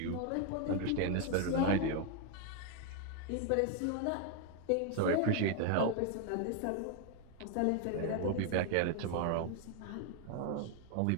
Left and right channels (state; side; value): different; both; correlation 0.00